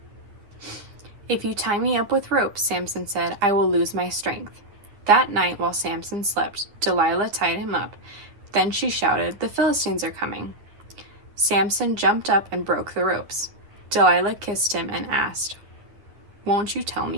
"If you tie me up with ropes," Samson said, "I will lose my strength." That night, while Samson slept, Delilah tied him up. Then she shouted, "The Philistines are coming." Samson jumped up and broke the ropes. Delilah kissed him and asked, "Won't you tell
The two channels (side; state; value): left; late; 10 ms